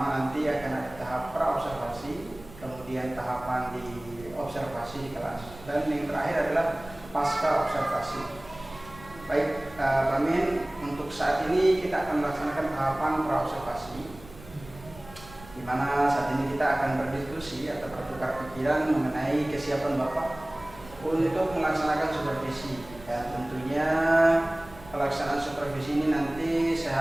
nanti akan ada tahap pra-observasi, kemudian tahapan di observasi di kelas, dan yang terakhir adalah pasca observasi. Baik, Pak Amin, untuk saat ini kita akan melaksanakan tahapan pra-observasi, di mana saat ini kita akan berdiskusi atau bertukar pikiran mengenai kesiapan Bapak untuk melaksanakan supervisi. Dan tentunya pelaksanaan supervisi ini nanti saya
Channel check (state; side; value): noise; right; rumble, 19 dB below the sound